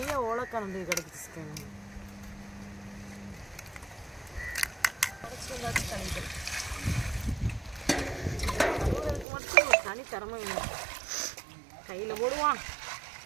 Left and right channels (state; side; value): drops out; left; at 9.2 s